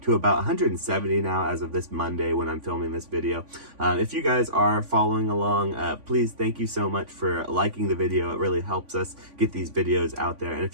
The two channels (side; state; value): left; late; 3.5 ms